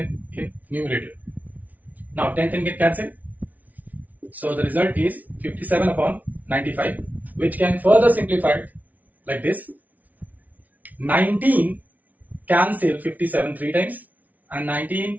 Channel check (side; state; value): left; late; 0.075 ms